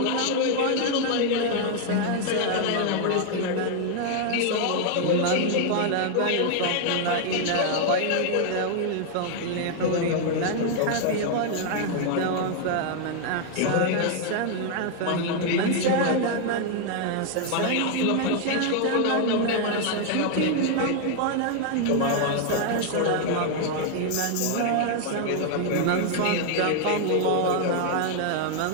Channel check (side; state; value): both; different; correlation 0.00